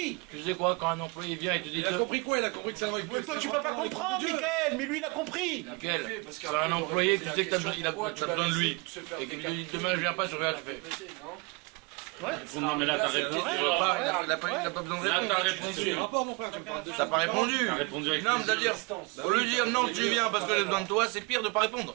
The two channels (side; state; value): left; quieter; 29.5 dB